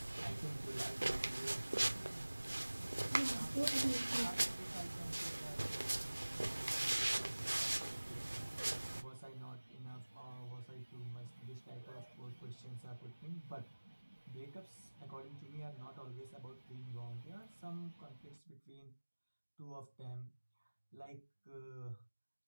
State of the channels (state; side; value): inverted; both; correlation -1.00